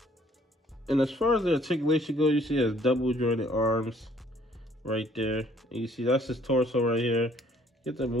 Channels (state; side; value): normal; both; correlation 0.61